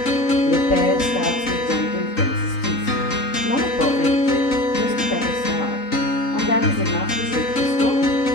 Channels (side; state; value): right; late; 3.8 ms